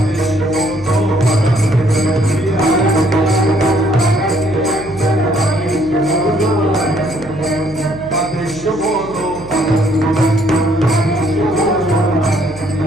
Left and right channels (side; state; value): right; noise; hum, 19 dB below the sound